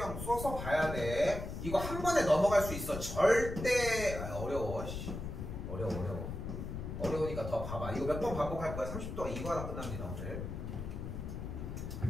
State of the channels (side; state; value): left; noise; rumble, 6 dB below the sound